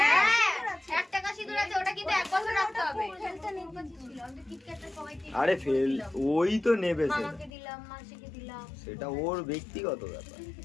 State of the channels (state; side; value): drops out; right; at 7.5 s